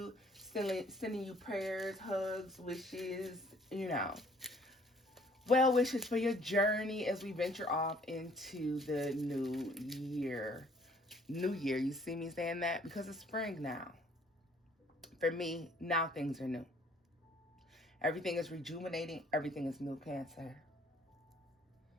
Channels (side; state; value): both; normal; correlation 0.59